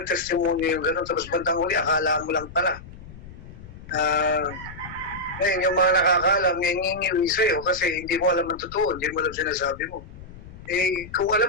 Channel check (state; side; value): noise; left; rumble, 16 dB below the sound